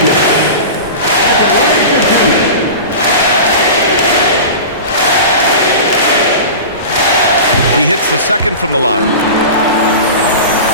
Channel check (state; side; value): inverted; both; correlation -0.31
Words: He hits the second from the line.